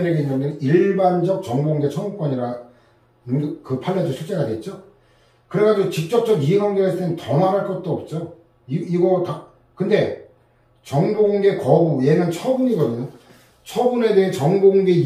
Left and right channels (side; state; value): both; identical; correlation 1.00